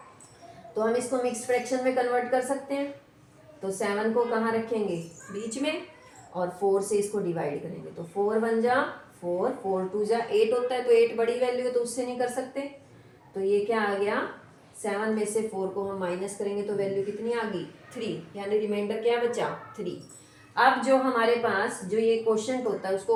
तो हम इसको मिक्स फ्रैक्शन में कन्वर्ट कर सकते हैं। तो 7 को कहाँ रखेंगे, बीच में, और 4 से इसको डिवाइड करेंगे। तो 4 1 जा 4, 4 2 जा 8 होता है, तो 8 बड़ी वैल्यू है तो उससे नहीं कर सकते। तो ये क्या आ गया, 7 में से 4 को हम माइनस करेंगे तो वैल्यू कितनी आ गई, 3, यानी रिमाइंडर क्या बचा, 3। अब जो हमारे पास जो ये क्वोशंट होता है उसको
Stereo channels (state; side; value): identical; both; correlation 1.00